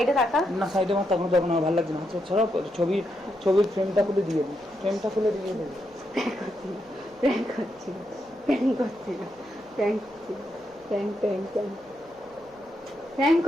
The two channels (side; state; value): right; noise; hum, 28 dB below the sound